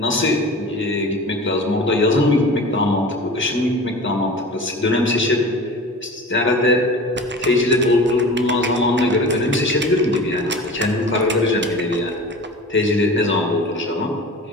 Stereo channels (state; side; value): normal; both; correlation 0.36